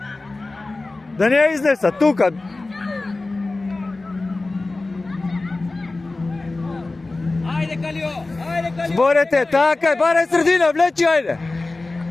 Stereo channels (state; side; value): quieter; right; 3.2 dB